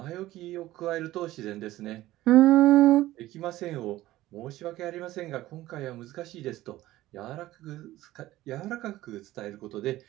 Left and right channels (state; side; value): quieter; left; 16.0 dB